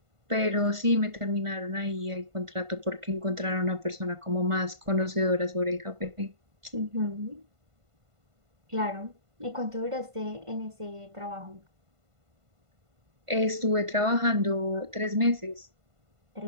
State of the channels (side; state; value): left; late; 1.5 ms